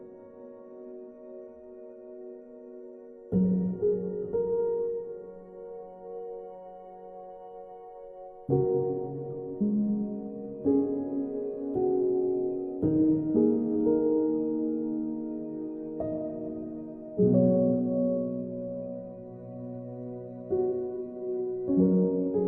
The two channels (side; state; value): both; identical; correlation 1.00